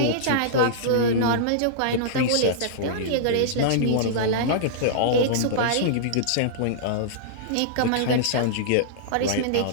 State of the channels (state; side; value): different; both; correlation -0.02